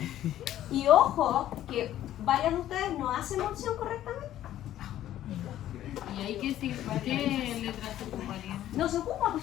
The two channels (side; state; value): right; quieter; 12.6 dB